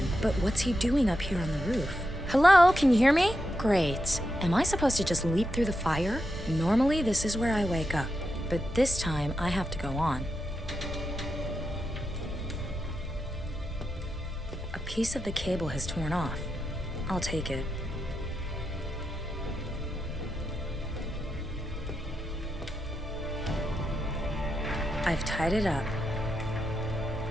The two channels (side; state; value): both; normal; correlation 0.86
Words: but what's he doing up here on the roof? Hello, can you hear me? Great. Am I supposed to just leap through the fire? Normally, this is where I wake up, but this time I have to go on. A piece of the cable has torn off. I'll take it. I've tied it up.